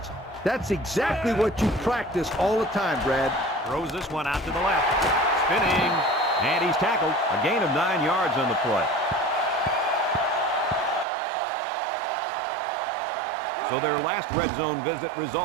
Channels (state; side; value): drops out; left; at 11.1 s